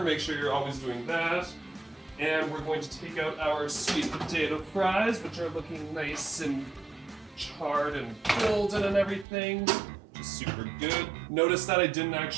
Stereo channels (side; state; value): left; drops out; at 9.2 s